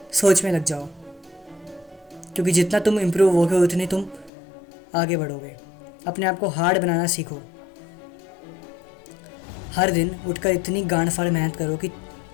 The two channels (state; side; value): drops out; right; at 4.3 s